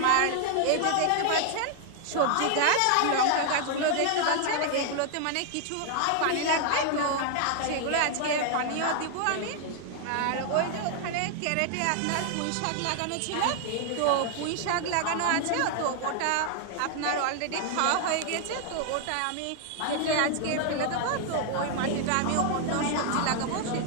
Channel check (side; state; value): both; different; correlation 0.00